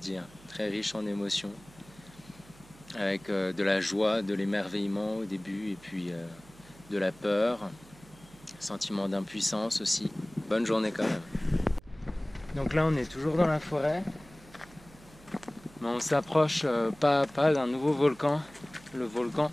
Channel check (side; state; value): right; noise; hum, 23 dB below the sound